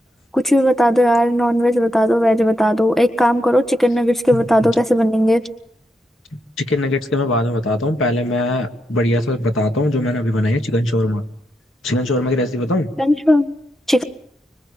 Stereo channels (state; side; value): normal; both; correlation 0.83